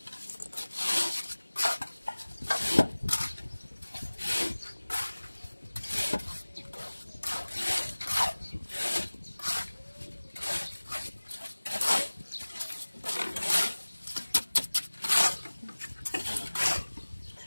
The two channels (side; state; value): both; inverted; correlation -1.00